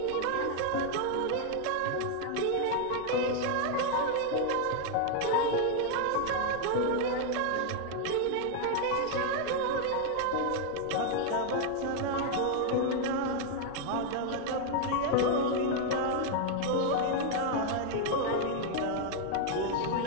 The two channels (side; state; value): both; different; correlation 0.00